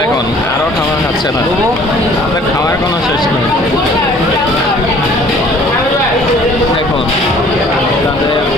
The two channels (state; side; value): normal; both; correlation 0.53